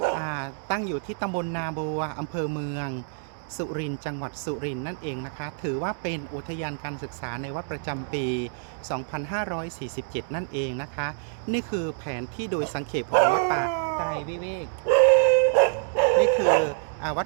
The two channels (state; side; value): silent; left; digital silence